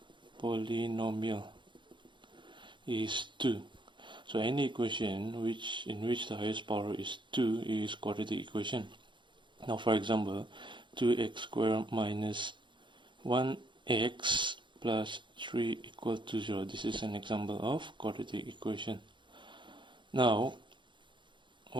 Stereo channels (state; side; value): late; left; 0.23 ms